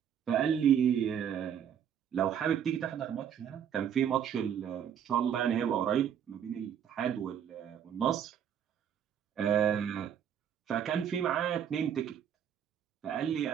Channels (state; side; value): quieter; left; 8.8 dB